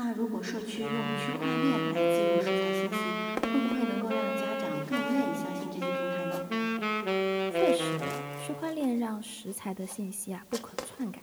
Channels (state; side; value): identical; both; correlation 1.00